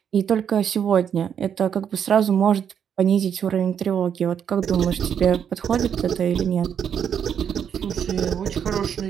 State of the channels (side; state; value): left; quieter; 8.2 dB